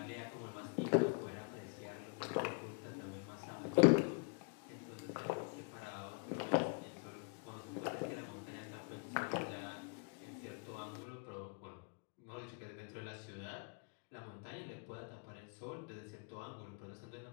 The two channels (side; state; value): right; quieter; 36.8 dB